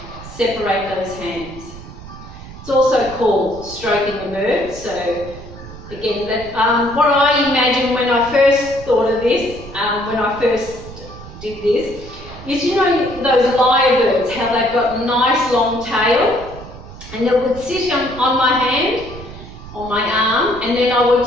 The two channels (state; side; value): noise; right; rumble, 15 dB below the sound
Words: Separate those hands. It's also called stroking the bird. So again, what I imagined when I first thought of this, when I first did this, is, you know, those lyrebirds, how they've got a nice long tail, and it would sit on my hand, on my arm, and then I